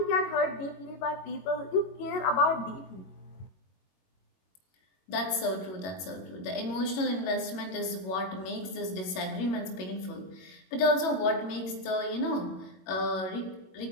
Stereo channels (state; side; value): late; right; 21 ms